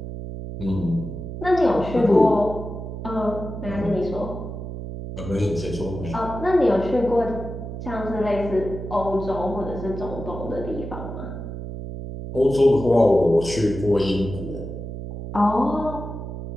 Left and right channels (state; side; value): noise; right; hum, 8 dB below the sound